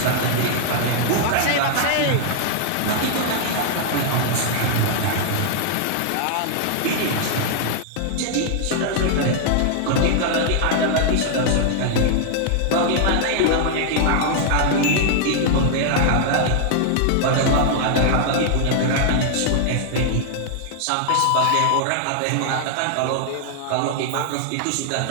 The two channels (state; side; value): different; both; correlation 0.00